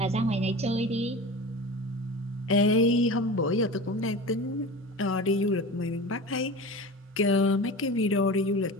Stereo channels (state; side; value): normal; both; correlation 0.32